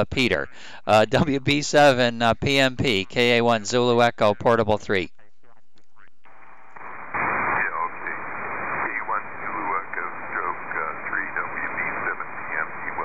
Peter. WB7 PMP, KA1 Zulu Echo, Portable 3.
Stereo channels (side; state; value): both; identical; correlation 1.00